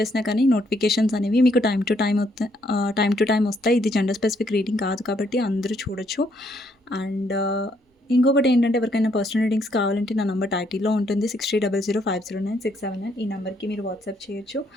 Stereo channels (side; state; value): both; normal; correlation 0.71